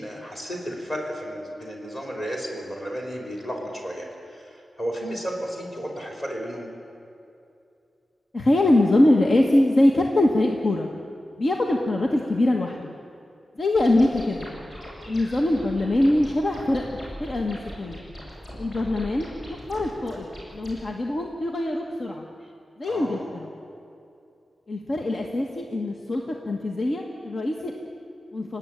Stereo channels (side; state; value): both; normal; correlation 0.94